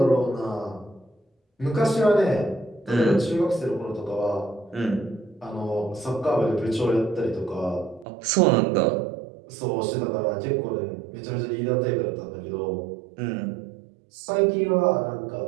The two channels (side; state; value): left; drops out; at 8.1 s